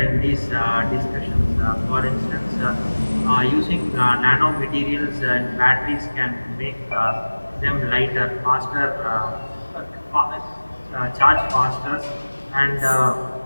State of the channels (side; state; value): both; inverted; correlation -1.00